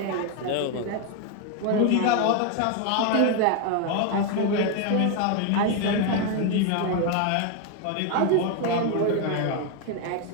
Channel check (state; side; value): different; both; correlation 0.01